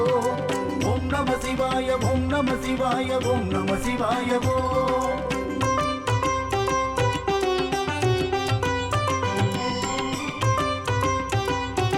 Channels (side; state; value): both; identical; correlation 1.00